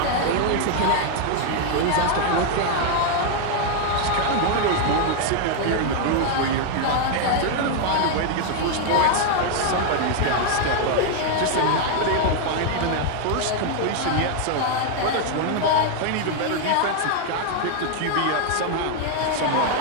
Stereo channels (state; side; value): different; both; correlation 0.01